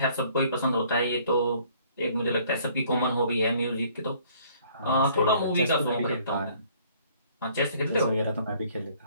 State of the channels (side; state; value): both; inverted; correlation -0.60